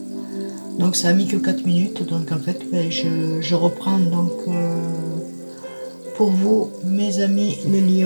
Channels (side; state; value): both; inverted; correlation -1.00